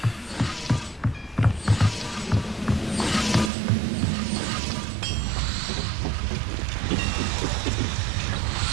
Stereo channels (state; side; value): drops out; left; at 3.5 s